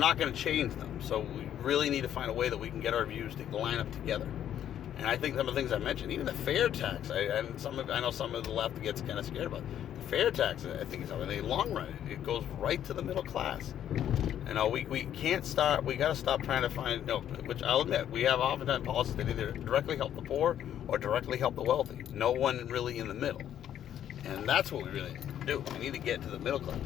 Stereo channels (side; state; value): right; quieter; 10.5 dB